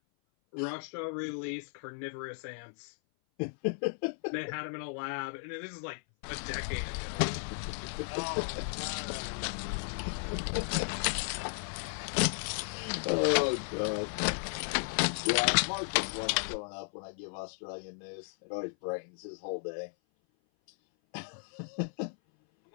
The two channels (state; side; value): silent; right; 55 dB below the other